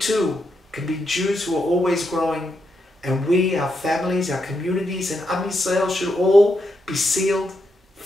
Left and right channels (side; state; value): both; normal; correlation 0.82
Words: can be Jews who are always growing, and we, our families, our communities, and Am Yisrael should all be sealed